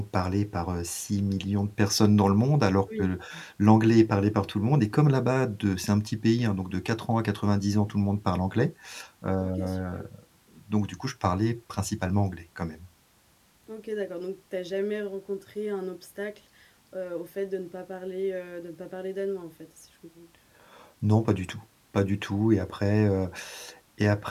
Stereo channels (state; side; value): identical; both; correlation 1.00